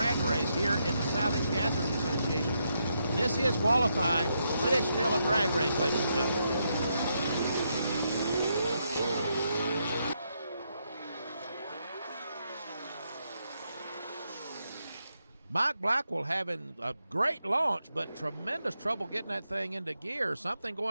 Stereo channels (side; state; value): both; inverted; correlation -0.80